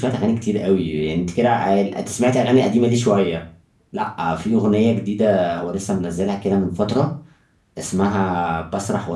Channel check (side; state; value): both; identical; correlation 1.00